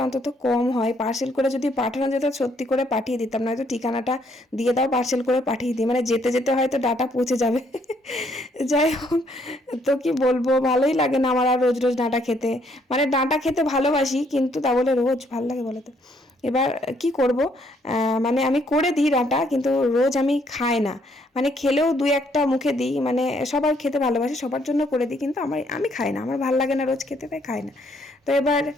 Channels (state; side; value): normal; both; correlation 0.69